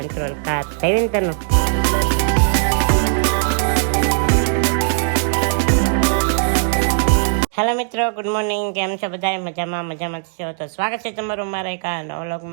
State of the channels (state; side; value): silent; left; digital silence